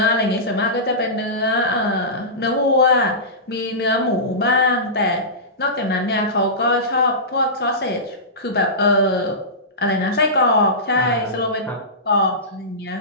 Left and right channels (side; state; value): both; normal; correlation -0.19